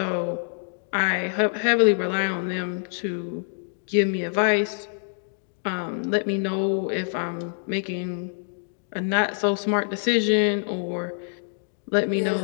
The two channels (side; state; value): right; silent; digital silence